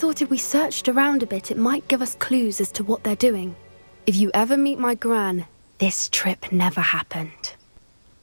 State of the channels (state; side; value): inverted; both; correlation -1.00